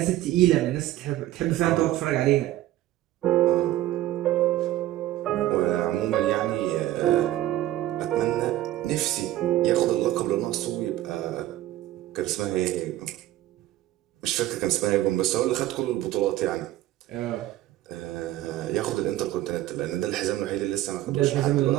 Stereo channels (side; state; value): left; quieter; 14.6 dB